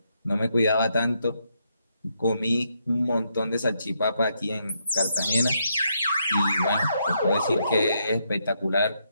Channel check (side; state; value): both; inverted; correlation -0.78